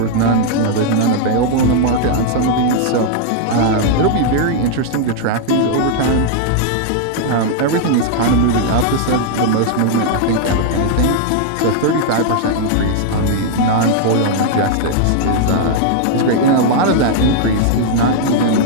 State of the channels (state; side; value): different; both; correlation -0.01